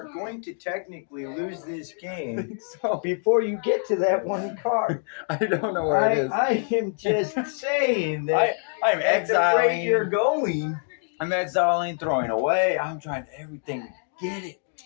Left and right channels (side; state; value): right; silent; digital silence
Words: going to technically lose this game So before you get to that 1 card. I don't know where it is. I am just saying that I'm at the rate you're exiling. going. I'm exiling, throwing away. I'm trying everything to get it.